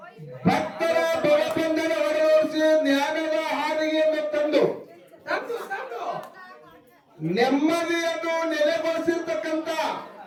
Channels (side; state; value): both; identical; correlation 1.00